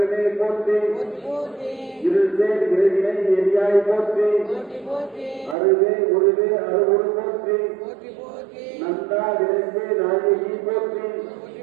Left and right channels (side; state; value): left; drops out; at 5.6 s